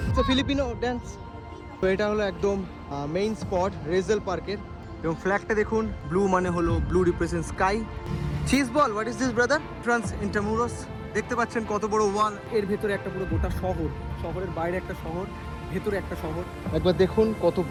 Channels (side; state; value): both; identical; correlation 1.00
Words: তো ফিলিপিনো ড্যান্স। তো এটা হলো একদম মেইন স্পট রেজেল পার্কের, এবং ফ্ল্যাগটা দেখুন, ব্লু মানে হলো blue represent sky. Cheese ball, what is this brother? Trans Intramuros. দেখতে পাচ্ছেন কত বড় ওয়াল, এর ভেতরে একটা পুরো গোটা শহর, শহরের বাইরে একটা শহর, ভেতরে একটা শহর। একবার দেখুন কত